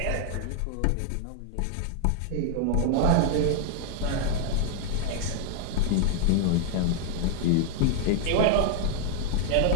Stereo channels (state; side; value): different; both; correlation 0.00